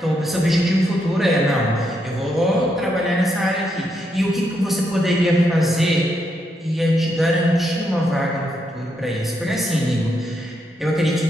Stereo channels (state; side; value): normal; both; correlation 0.80